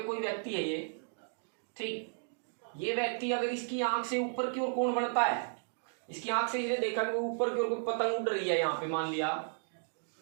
कोई व्यक्ति है ये, ठीक, ये व्यक्ति अगर इसकी आंख से ऊपर की ओर कोण बढ़ता है, इसकी आंख से इसने देखा कि ऊपर की ओर कोई पतंग उड़ रही है यहाँ पे मान लिया,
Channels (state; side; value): silent; left; digital silence